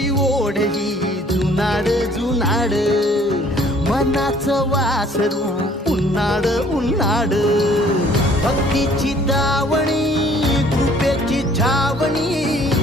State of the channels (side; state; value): both; normal; correlation 0.57